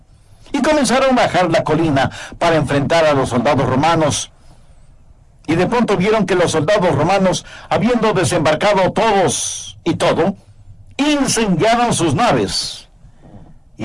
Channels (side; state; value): both; identical; correlation 1.00